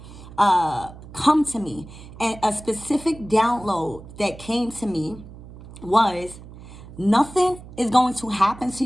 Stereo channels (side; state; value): right; noise; hum, 17 dB below the sound